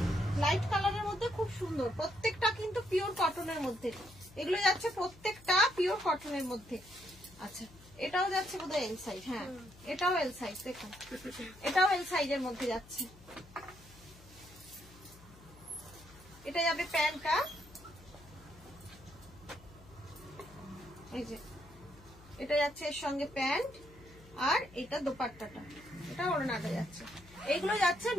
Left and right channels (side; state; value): left; noise; hum, 22 dB below the sound